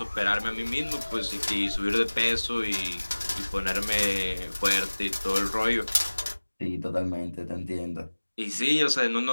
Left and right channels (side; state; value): both; inverted; correlation -1.00